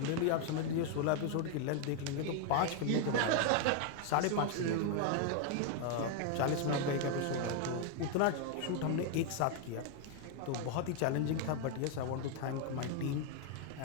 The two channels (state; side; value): different; both; correlation 0.00